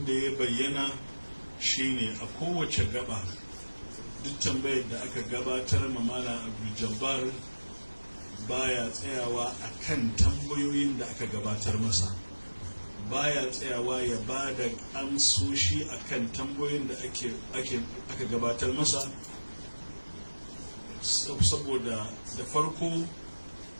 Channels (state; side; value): inverted; both; correlation -1.00